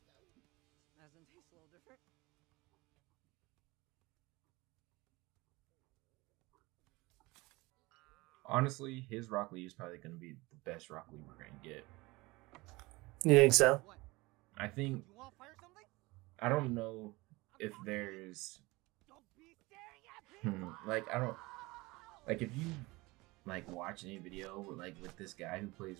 Doesn't taste a little different. Honestly, his Rock Lee is probably going to be the best Rock Lee we're going to get. You think so? What? I think, You want to fire something? I don't know if there's, Don't be staring at me. like, I don't, like, if you, like, watch any video, like, with this guy who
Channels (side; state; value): left; quieter; 22.4 dB